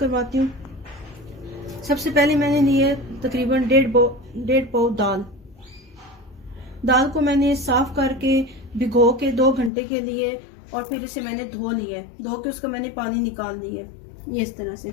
हूँ। सबसे पहले मैंने ली है तकरीबन डेढ़ पाव दाल को मैंने साफ करके भिगो के 2 घंटे के लिए, और फिर इसे मैंने धो लिया है। धो के उसका मैंने पानी निकाल लिया है, ये इस तरह से।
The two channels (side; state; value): right; drops out; at 9.7 s